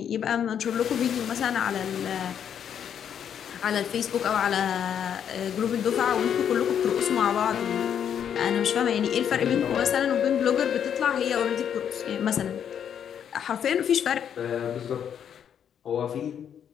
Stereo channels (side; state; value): right; quieter; 8.7 dB